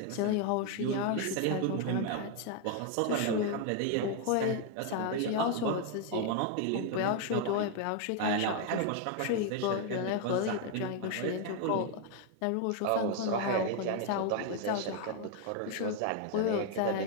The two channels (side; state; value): both; different; correlation 0.01